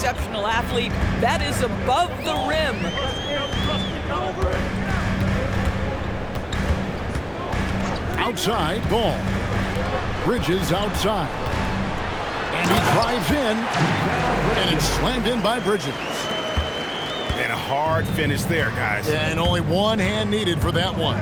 athlete. That is above the rim. Outside, ball. Bridges outside. And he drives in. And it's slammed in by Bridges. And a hard finish there, guys. And only one hand needed for that one.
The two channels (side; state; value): both; identical; correlation 1.00